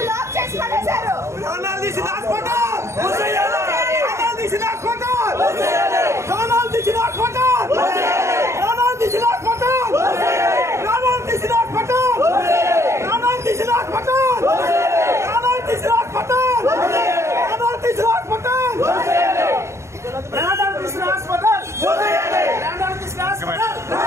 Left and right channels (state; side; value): late; left; 0.14 ms